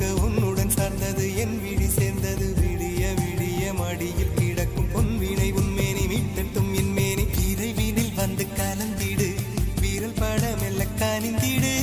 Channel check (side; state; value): both; identical; correlation 1.00